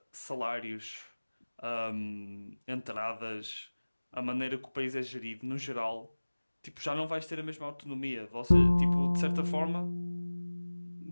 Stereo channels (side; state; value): both; inverted; correlation -1.00